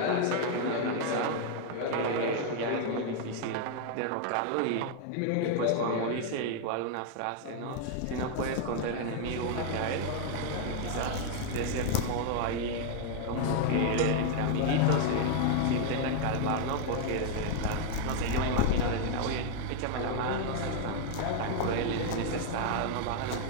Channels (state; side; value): different; both; correlation 0.00